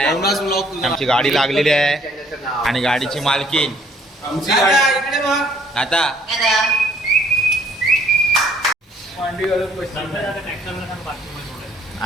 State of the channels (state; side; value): normal; both; correlation 0.62